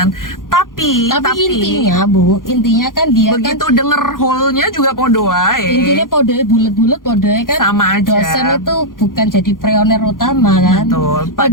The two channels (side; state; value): right; late; 0.90 ms